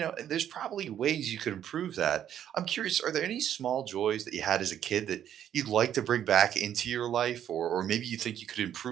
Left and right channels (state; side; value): quieter; left; 10.2 dB